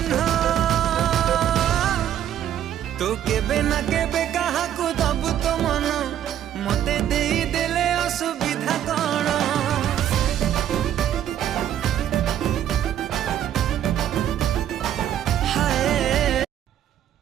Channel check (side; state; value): left; quieter; 10.8 dB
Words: तो केबे ना केबे कहा को दबु तो मन मते देई देले असुविधा कौन